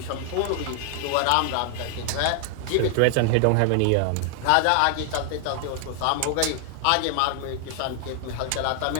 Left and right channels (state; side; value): different; both; correlation 0.00